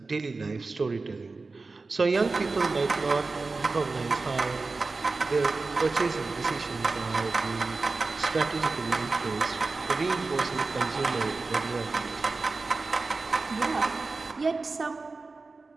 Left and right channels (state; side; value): quieter; left; 3.8 dB